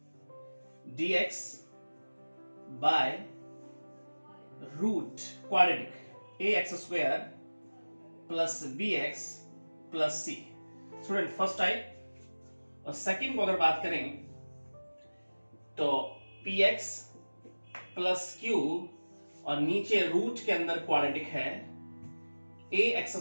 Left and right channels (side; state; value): both; inverted; correlation -1.00